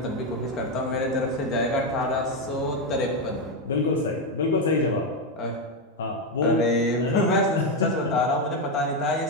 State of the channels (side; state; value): both; normal; correlation 0.07